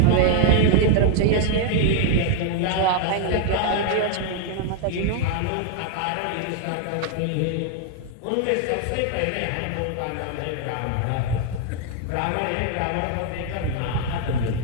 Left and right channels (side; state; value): both; different; correlation 0.00